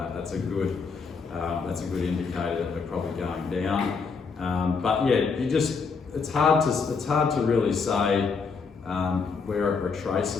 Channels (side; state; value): right; quieter; 5.1 dB